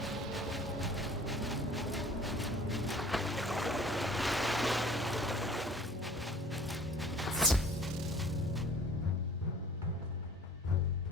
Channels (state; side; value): normal; both; correlation 0.48